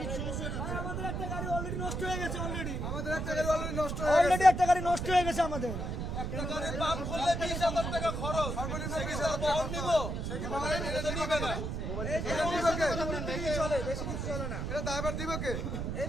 সমস্যা হয়ে যাচ্ছে। আমাদের একটা গাড়ি অলরেডি নষ্ট হয়ে গেছে আমাদের একটা গাড়ি অলরেডি নষ্ট হয়ে অলরেডি একটা গাড়ি নষ্ট হয়ে গেছে আমাদের। একটা গাড়ির পাম্প খুললে 20,000 টাকা খরচ, সর্বনিম্ন 20,000 টাকা নিব, এটা তো নিবে না। এটা দিবে কে? চলে বেশি কিছু চলে না। এটা ড্রাইভার দিবে কে?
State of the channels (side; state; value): right; noise; rumble, 3 dB below the sound